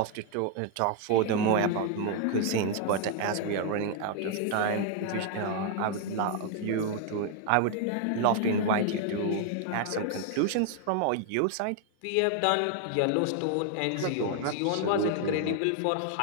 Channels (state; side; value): different; both; correlation 0.00